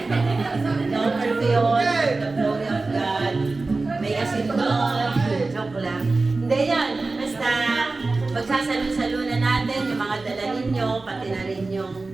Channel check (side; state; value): left; quieter; 3.5 dB